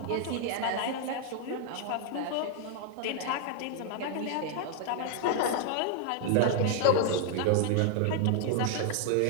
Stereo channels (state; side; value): different; both; correlation 0.00